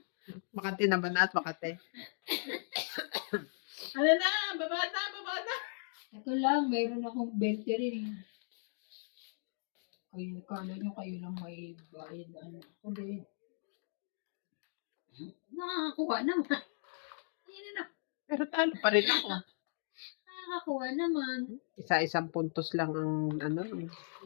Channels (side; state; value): right; silent; digital silence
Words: Makati na ba na at makati? Ano na? Baba na. Ito lang, mayroon akong 20 rin eh. Kayo, kala nyo kayo lang may bayad na ano. Kundi, nakakakuha naman. Ayun na, Pero talo pa rin ako. nakakakuha naman. Isa-isang puntos lang ang